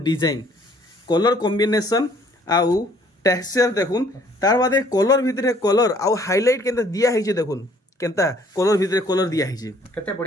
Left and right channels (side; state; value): both; normal; correlation 0.60